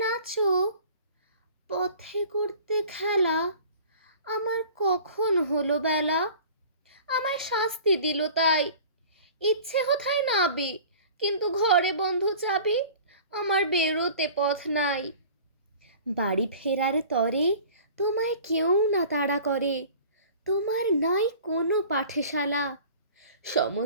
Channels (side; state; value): both; inverted; correlation -0.44